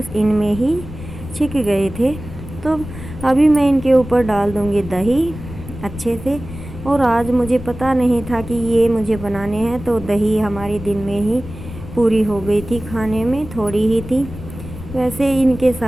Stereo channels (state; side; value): noise; left; rumble, 12 dB below the sound